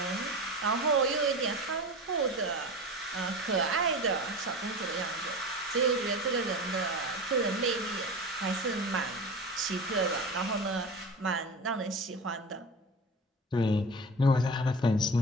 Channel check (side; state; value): both; normal; correlation 0.30